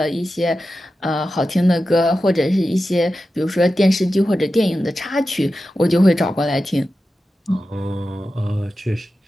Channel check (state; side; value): normal; both; correlation 0.92